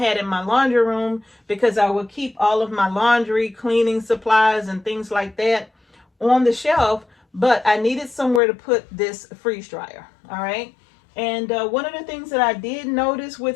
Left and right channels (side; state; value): right; drops out; at 8.4 s